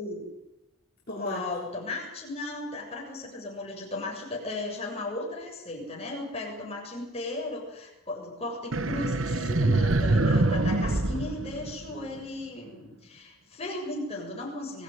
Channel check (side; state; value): both; normal; correlation 0.57